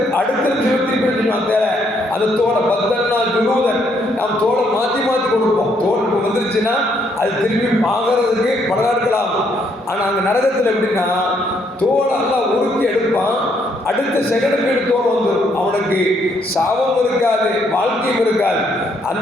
திருப்பி அந்த தோலை பத்தன்னா ஜுலூதன் நாம் தோலை மாற்றி கொடுப்போம். தோல் வந்துருச்சுன்னா அது திருப்பி வாங்குறதுக்கு பல நாட்கள் ஆகும். ஆனால் அங்கே நரகத்தில் எப்படின்னா தோலை எல்லாம் உருக்கி எடுப்பான். அடுத்த செகண்டுக்கு தோல் வந்துடும். அவனுக்கு சாபம் இருக்காது, வாழ்க்கையும் இருக்காது.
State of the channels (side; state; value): both; normal; correlation 0.71